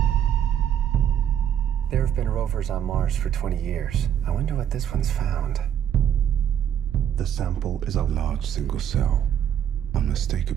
There have been rovers on Mars for 20 years. I wonder what this one's found. The sample is a large single cell,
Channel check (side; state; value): left; quieter; 9.7 dB